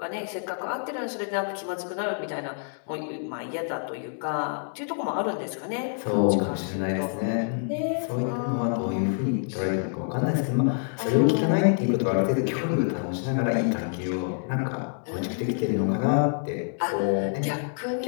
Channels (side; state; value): right; silent; digital silence